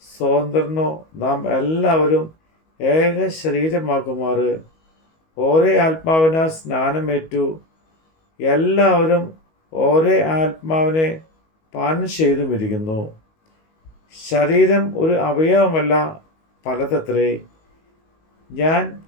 സ്വതന്ത്രനോ നാം എല്ലാവരും ഏക ശരീരമാകുമാറ് ഒരേ ആത്മാവിനാൽ സ്നാനമേറ്റു. എല്ലാവരും ഒരേ ആത്മാവിനെ പാനം ചെയ്തുമിരിക്കുന്നു. ശരീരം ഒരു അവയവമല്ല, പലതത്രേ. ഞാൻ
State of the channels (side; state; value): right; late; 19 ms